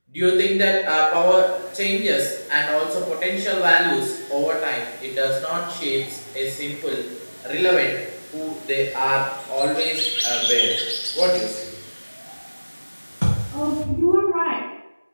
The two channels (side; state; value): both; inverted; correlation -1.00